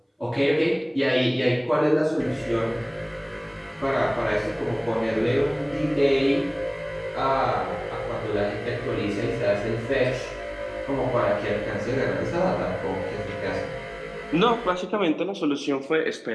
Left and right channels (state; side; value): identical; both; correlation 1.00